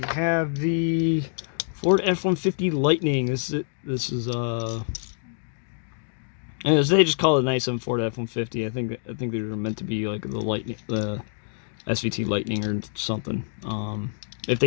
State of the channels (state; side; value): silent; right; digital silence